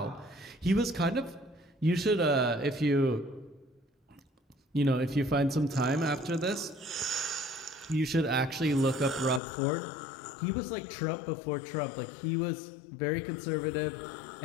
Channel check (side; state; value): right; drops out; at 9.4 s